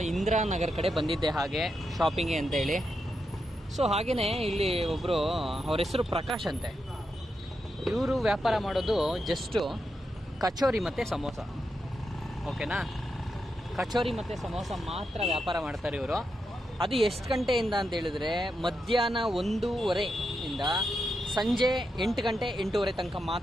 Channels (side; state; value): both; normal; correlation 0.85